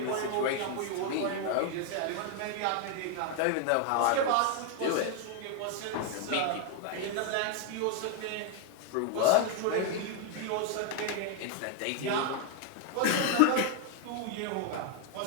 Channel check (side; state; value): both; different; correlation 0.01